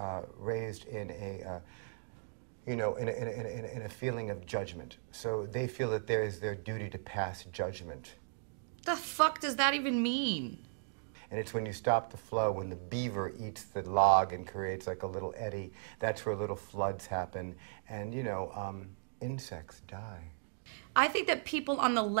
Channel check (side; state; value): left; silent; digital silence